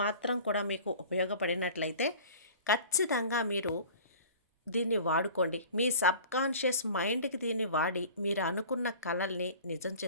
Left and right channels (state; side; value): inverted; both; correlation -0.43